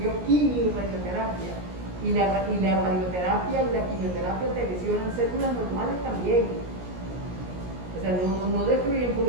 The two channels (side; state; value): left; late; 17 ms